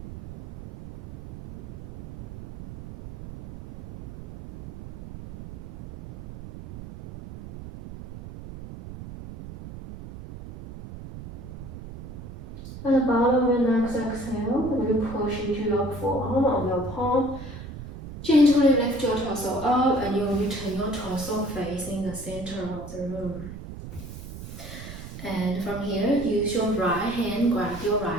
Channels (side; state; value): right; noise; rumble, 12 dB below the sound